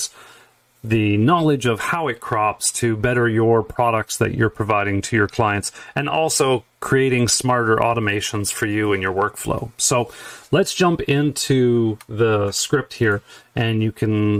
the knowledge of how it crops to better your products that you're providing to your clients, and also creating smarter automations for you and your workflow. So let's jump into the script here, and you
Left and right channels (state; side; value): identical; both; correlation 1.00